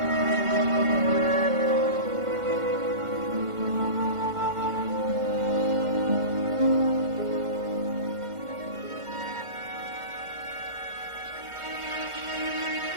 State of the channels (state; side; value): late; left; 1.5 ms